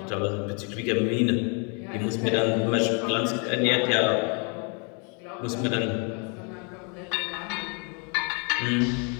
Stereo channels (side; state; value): right; quieter; 36.7 dB